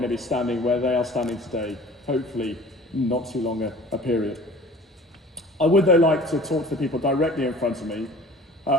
to be standing where they are standing today, hopefully not too long a period. I would though like to talk to the people directly in front of me.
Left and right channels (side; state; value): both; normal; correlation 0.46